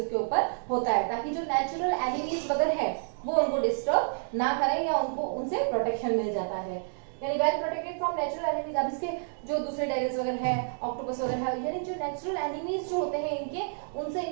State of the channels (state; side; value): silent; left; digital silence